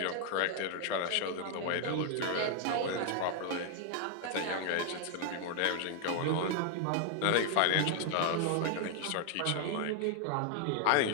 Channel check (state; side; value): different; both; correlation 0.00